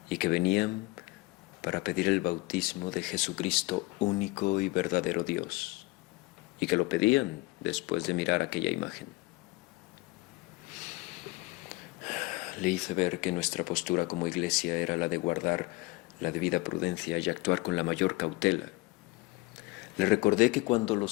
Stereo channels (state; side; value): quieter; right; 22.3 dB